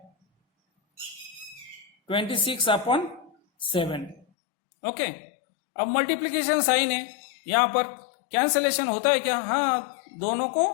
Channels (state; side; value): drops out; right; at 4.2 s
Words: 26/7. Okay, अब मल्टीप्लीकेशन साइन है, यहां पर कैंसलेशन होता है क्या? हाँ, दोनों